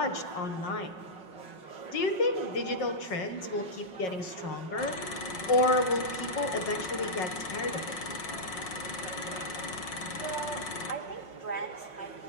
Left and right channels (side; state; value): right; late; 5.5 ms